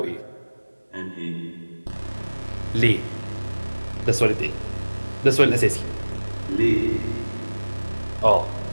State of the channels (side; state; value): both; inverted; correlation -1.00